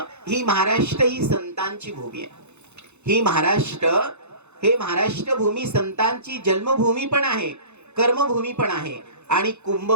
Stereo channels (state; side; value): late; left; 0.81 ms